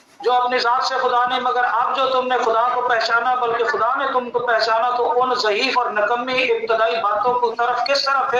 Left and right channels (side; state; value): both; identical; correlation 1.00